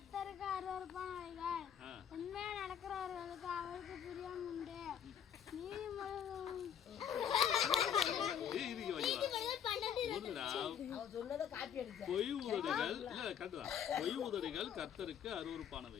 அருவருப்பானவைகள், உண்மையா நடக்கிறவர்களுக்கு அவருக்கு பிரியம் உண்டு. பொய் உதடுகள் கர்த்தருக்கு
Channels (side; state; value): right; quieter; 8.7 dB